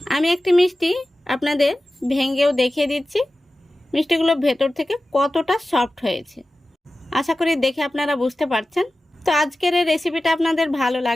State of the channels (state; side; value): normal; both; correlation 0.95